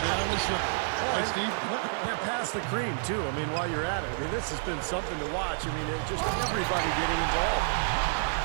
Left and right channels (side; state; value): left; silent; 58 dB below the other